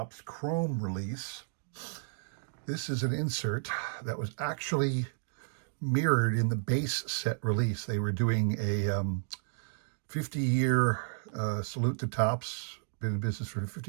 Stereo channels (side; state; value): left; silent; digital silence